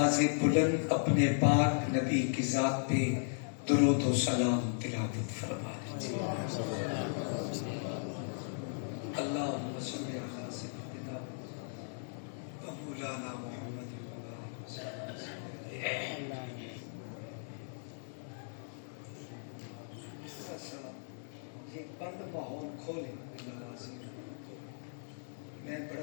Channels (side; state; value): right; silent; digital silence